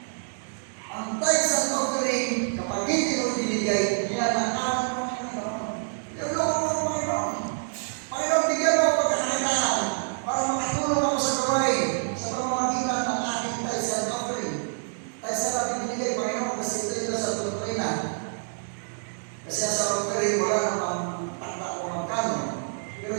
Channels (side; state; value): left; silent; digital silence